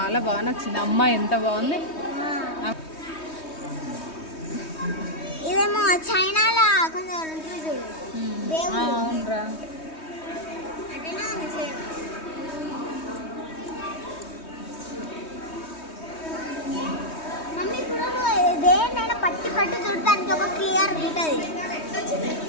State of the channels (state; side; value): late; right; 3.2 ms